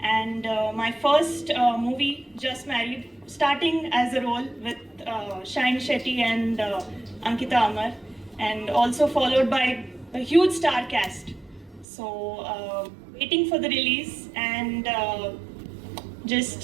And my first movie, just married, starting as a role with Shine Shetty and Ankita Amar, and also followed by a huge star cast. So waiting for the release, and just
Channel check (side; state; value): left; drops out; at 11.9 s